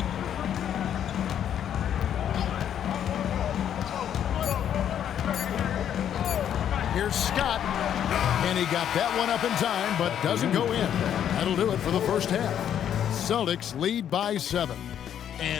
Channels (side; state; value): right; quieter; 9.6 dB